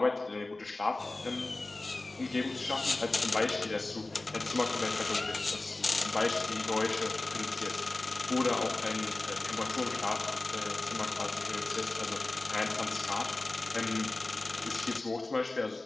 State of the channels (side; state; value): right; quieter; 3.0 dB